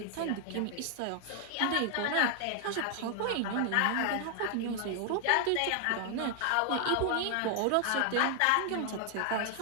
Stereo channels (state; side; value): different; both; correlation 0.00